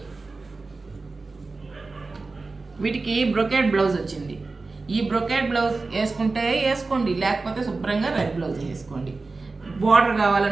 వీటికి బ్రొకేడ్ బ్లౌజ్ వచ్చింది. ఈ బ్రొకేడ్ బ్లౌజ్ వేసుకుంటే వేసుకోండి, లేకపోతే శుభ్రంగా రెడ్ బ్లౌజ్ వేసుకోండి. బార్డర్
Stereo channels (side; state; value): left; quieter; 3.7 dB